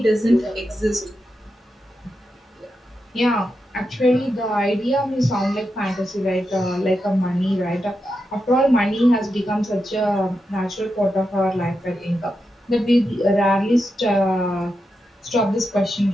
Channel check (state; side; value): normal; both; correlation 0.87